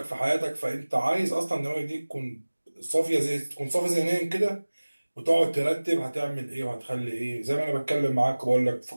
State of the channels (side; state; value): both; inverted; correlation -1.00